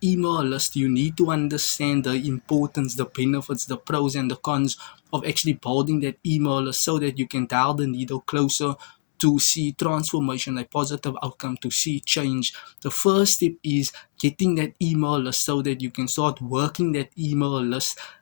email list, you need to understand the importance, the benefits, the pros and the cons of actually building that email list, so that you can dial the needle closer to see transformation, a positive outcome, to see change. The first step is getting that email list so that you can start working that email list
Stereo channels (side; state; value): right; silent; 63 dB below the other